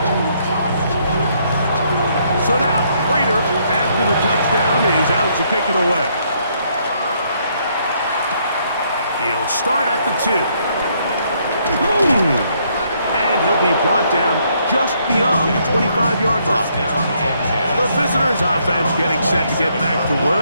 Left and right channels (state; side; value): inverted; both; correlation -0.70